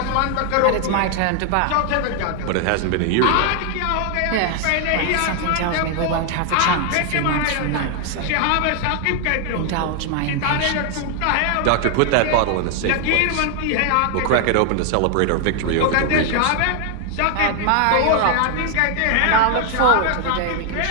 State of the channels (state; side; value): different; both; correlation 0.00